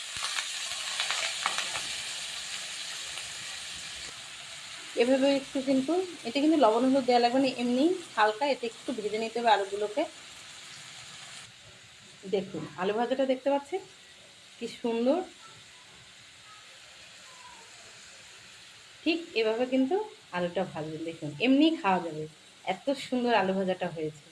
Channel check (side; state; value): both; identical; correlation 1.00